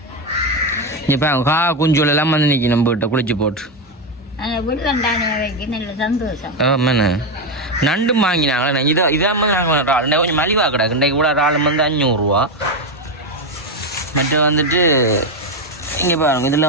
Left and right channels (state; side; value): normal; both; correlation 0.09